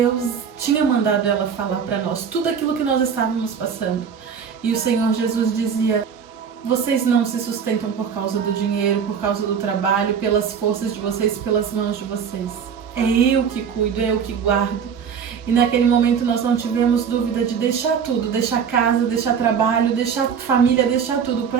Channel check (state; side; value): quieter; left; 7.0 dB